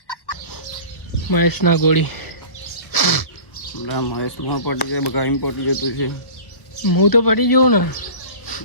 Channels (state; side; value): late; right; 1.3 ms